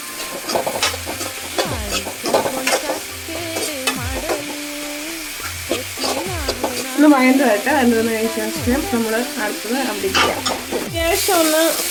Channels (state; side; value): identical; both; correlation 1.00